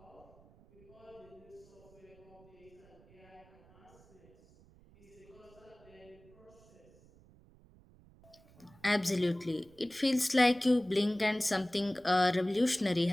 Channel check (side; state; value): right; noise; rumble, 26 dB below the sound